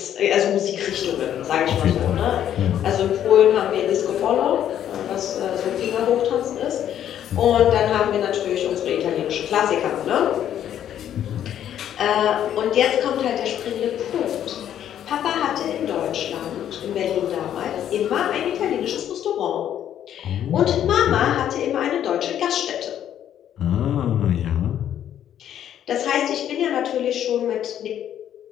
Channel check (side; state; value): right; quieter; 10.4 dB